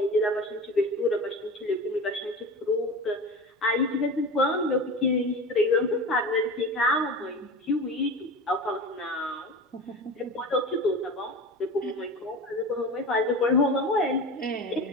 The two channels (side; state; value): both; normal; correlation 0.31